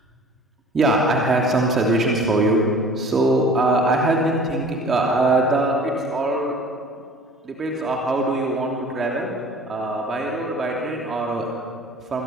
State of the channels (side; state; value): both; normal; correlation 0.46